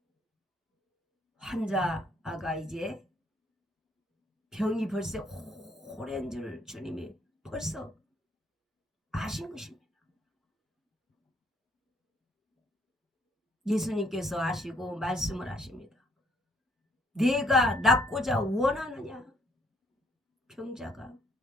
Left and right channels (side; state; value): both; normal; correlation 0.67